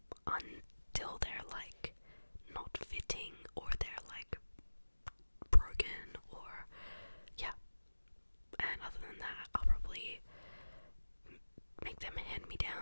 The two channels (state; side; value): inverted; both; correlation -1.00